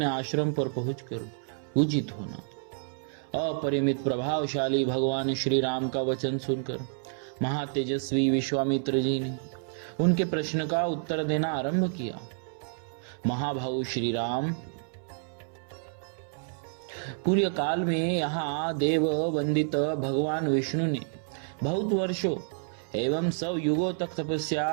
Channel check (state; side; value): silent; left; 58 dB below the other